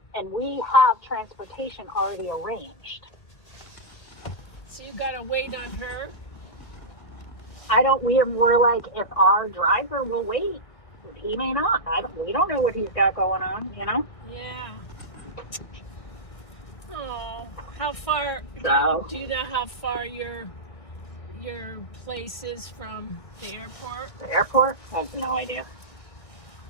and we have transportation already arranged. So you gotta wait on her? We're like, if our driver will wait, he may not. We don't know what he's got going on, you know? Yeah. Oh, how far, So, do you know how far your place is from the airport? the airport? I have no idea.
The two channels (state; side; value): late; right; 1.6 ms